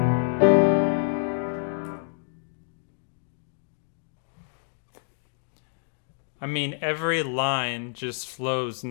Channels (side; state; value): right; silent; digital silence